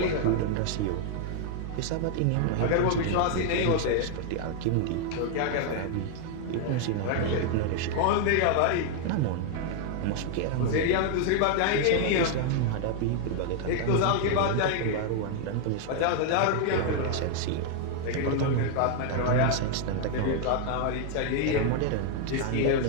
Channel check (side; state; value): both; different; correlation 0.00